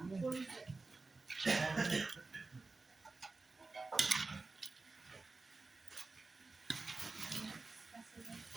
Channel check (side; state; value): left; quieter; 3.7 dB